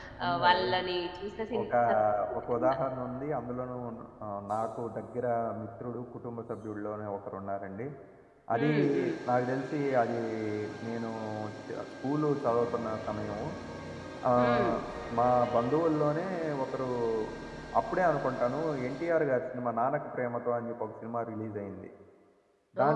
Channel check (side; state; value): both; identical; correlation 1.00